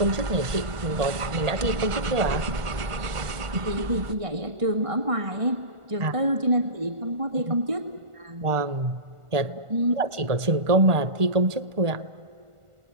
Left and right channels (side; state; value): left; late; 1.5 ms